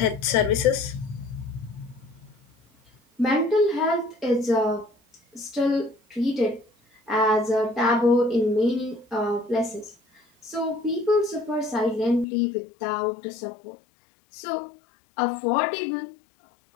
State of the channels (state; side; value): drops out; right; at 12.2 s